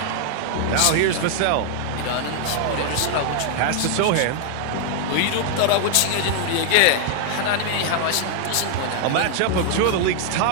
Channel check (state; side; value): different; both; correlation 0.00